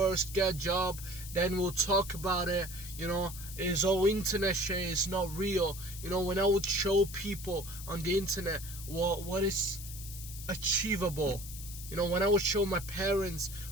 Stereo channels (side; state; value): left; noise; hiss, 12 dB below the sound